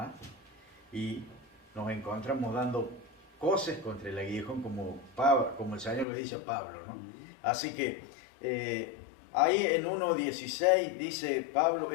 Y nos encontramos dando cosas contra el aguijón, como el Señor le dice a Pablo, ¿no? Así que ahí en 1:16 dice Pablo,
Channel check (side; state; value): right; drops out; at 6.1 s